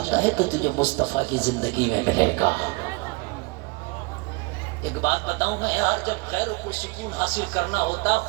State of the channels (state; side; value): quieter; left; 26.4 dB